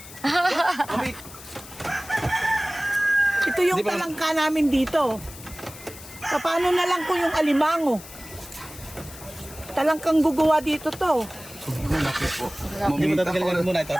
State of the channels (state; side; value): noise; left; hiss, 16 dB below the sound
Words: Ito yung talangka namin dito. Paano na lang kung yung alimango? Talangkang gugawa dito to. Hindi mo tatagalan muna ito.